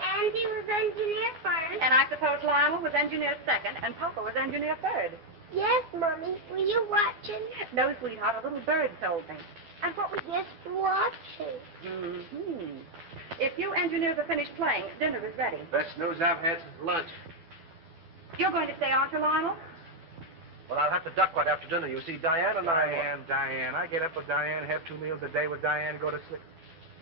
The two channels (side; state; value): left; late; 12 ms